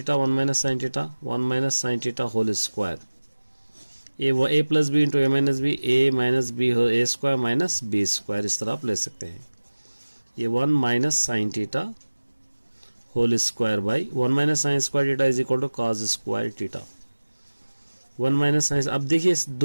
1 minus sine theta 1 minus sine theta whole square, A plus B into A minus B, A minus B हो A square minus B square, इस तरह आप ले सकते हैं। ये 1 minus sine theta whole square by 1 minus sine square theta is equal to cos square theta, 1 minus sine. अब देखिए इस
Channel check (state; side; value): inverted; both; correlation -1.00